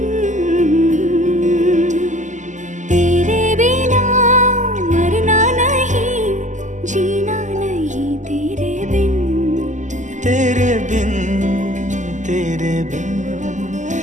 तेरे बिना मरना नहीं जीना नहीं तेरे बिन तेरे बिन तेरे बिन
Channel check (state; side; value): late; left; 0.36 ms